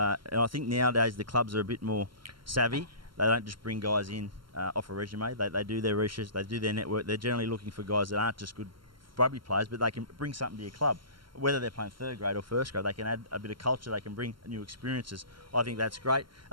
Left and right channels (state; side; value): late; left; 0.73 ms